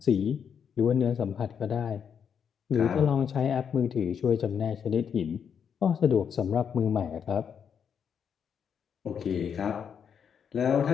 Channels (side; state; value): right; quieter; 7.4 dB